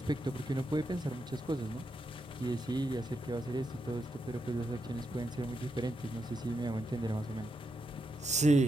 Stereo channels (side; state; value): both; normal; correlation 0.83